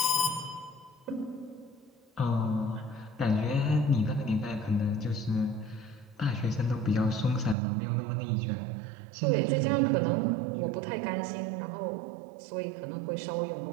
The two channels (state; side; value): drops out; left; at 7.6 s